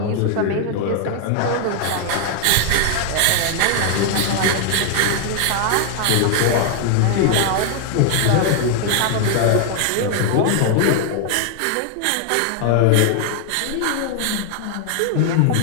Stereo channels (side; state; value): both; different; correlation 0.00